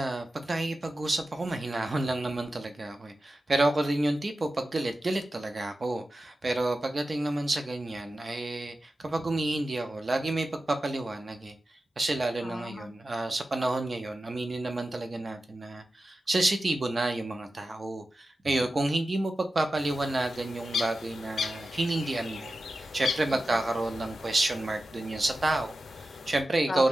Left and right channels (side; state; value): both; normal; correlation 0.93